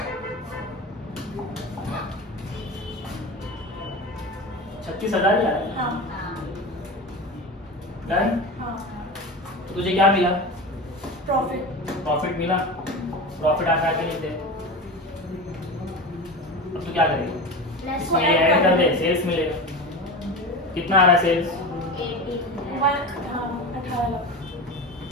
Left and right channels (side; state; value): both; normal; correlation 0.28